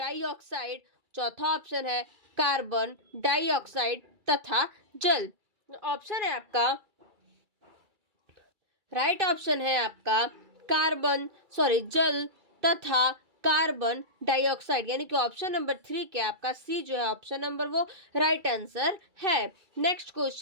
चौथा ऑप्शन है कार्बन डाइऑक्साइड तथा जल। ऑप्शन है आपका राइट ऑप्शन है आपका जल तथा कार्बन डाइऑक्साइड, यानी कि ऑप्शन नंबर 3 क्या आपका सी जो है ऑप्शन नंबर वो राइट आंसर है। नेक्स्ट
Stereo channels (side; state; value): left; late; 2.3 ms